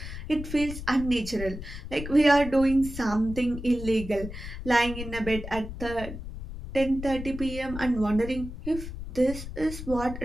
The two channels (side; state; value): left; noise; rumble, 9 dB below the sound